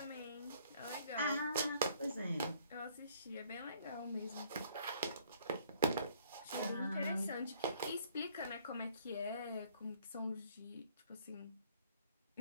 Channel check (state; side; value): inverted; both; correlation -0.62